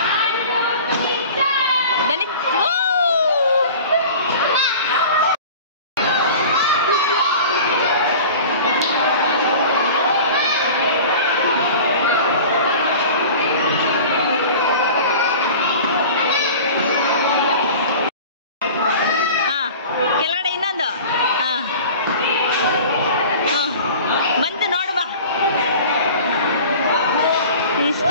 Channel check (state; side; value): inverted; both; correlation -0.39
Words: ಕೆಳಗಡೆ ಇನ್ನೊಂದು ಬಂತು ನೋಡು ಬಾ.